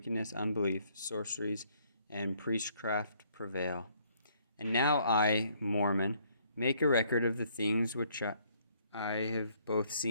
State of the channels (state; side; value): inverted; both; correlation -0.66